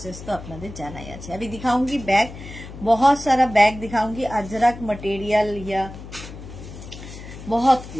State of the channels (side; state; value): left; noise; hum, 13 dB below the sound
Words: তো আপনাদের জানাই আছে। अभी दिखाऊंगी बैग, बहुत सारा बैग दिखाऊंगी। अजरक मटेरियल या बहुत